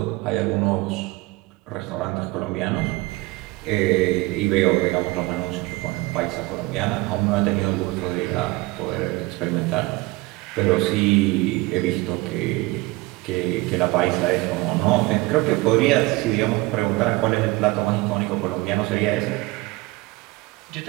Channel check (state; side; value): quieter; left; 21.9 dB